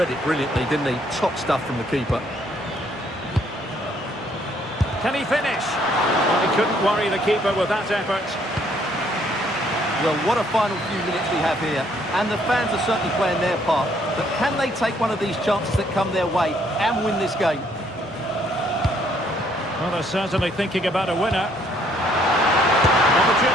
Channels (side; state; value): both; normal; correlation 0.67